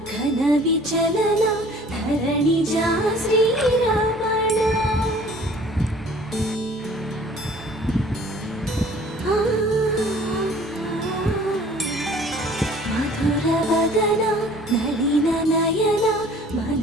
ఘన విచలన ధరణిజా శ్రీరమణ మధుర వదన నళిన నయన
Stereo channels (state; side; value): normal; both; correlation 0.51